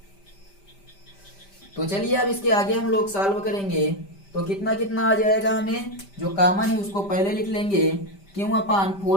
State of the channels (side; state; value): right; late; 5.1 ms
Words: तो चलिए अब इसके आगे हम लोग सॉल्व करेंगे। तो कितना कितना आ जाएगा? हमें जो कॉमन है उसको पहले लिख लेंगे, Q upon